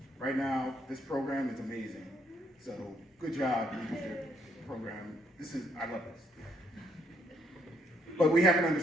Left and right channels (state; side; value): normal; both; correlation 0.71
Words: right now this program is amazing. So good job, leadership program. I love this. But we have an